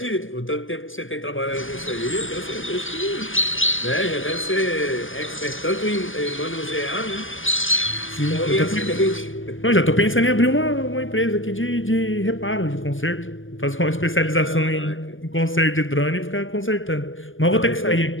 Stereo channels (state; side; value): late; right; 0.58 ms